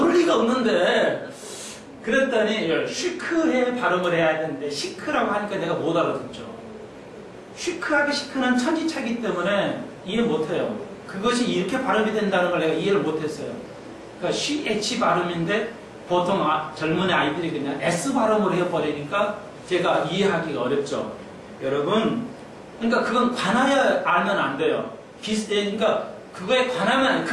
리가 없는데, 그랬더니 쉬크에 발음을 해야 되는데 시크라고 하니까 내가 못 알아듣죠. 쉬크하게 시크는 천지차기 때문에 이해 못해요. 그것이 이렇게 발음이 된다는 걸 내가 이해를 못했어요. 그러니까 CH 발음인데 보통 젊은 아이들이 그냥 S 발음으로 해버리니까 제가 이해하기가 어렵죠. 여러분, 그러니까 그건 관하여 알면 안 돼요. 그러니까 그거에 관하면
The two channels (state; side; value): identical; both; correlation 1.00